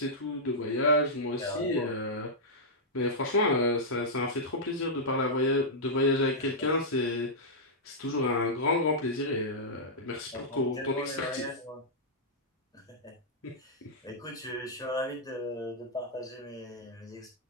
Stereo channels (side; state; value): both; normal; correlation -0.09